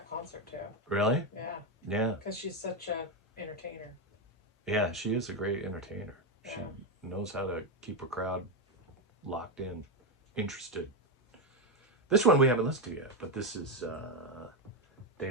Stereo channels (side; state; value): both; normal; correlation 0.08